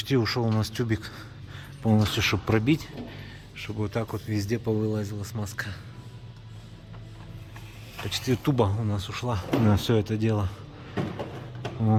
ушел у нас тюбик полностью, чтобы пробить, чтобы вот так вот везде повылазила смазка. Почти туба у нас ушла на все это дело.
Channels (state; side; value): identical; both; correlation 1.00